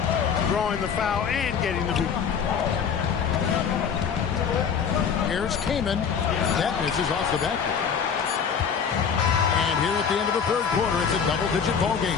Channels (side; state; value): right; quieter; 6.9 dB